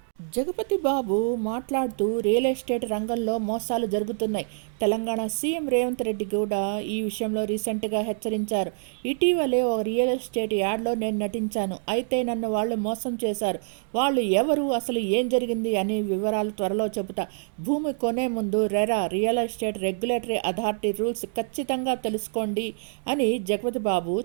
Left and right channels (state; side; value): silent; left; digital silence